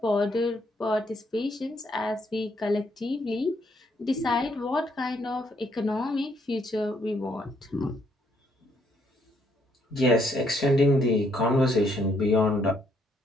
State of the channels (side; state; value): both; normal; correlation 0.70